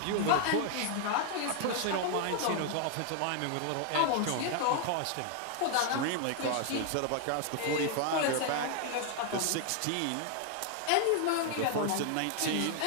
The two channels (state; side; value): different; both; correlation 0.00